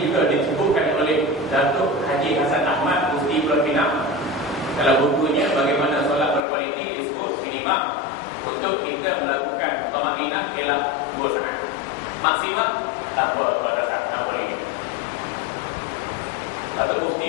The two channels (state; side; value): drops out; right; at 6.4 s